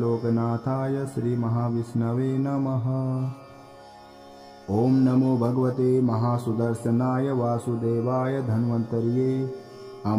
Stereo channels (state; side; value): identical; both; correlation 1.00